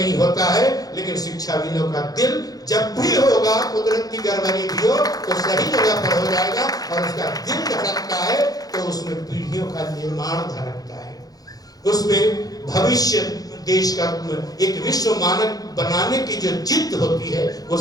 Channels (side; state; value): right; late; 0.18 ms